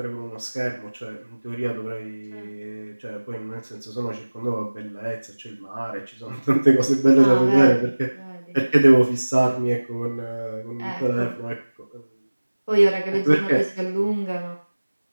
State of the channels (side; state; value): both; inverted; correlation -1.00